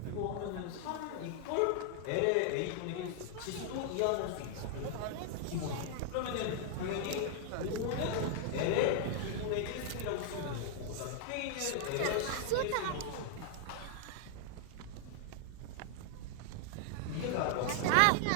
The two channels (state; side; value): different; both; correlation 0.00